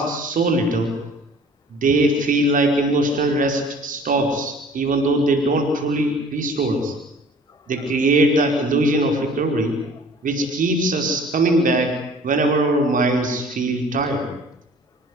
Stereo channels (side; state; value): both; normal; correlation 0.49